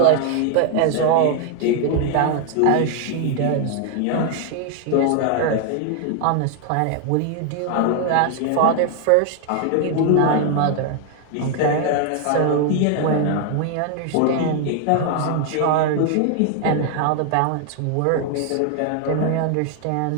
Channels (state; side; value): different; both; correlation 0.00